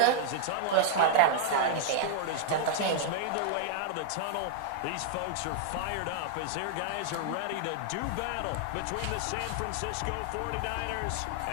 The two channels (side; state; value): both; different; correlation 0.00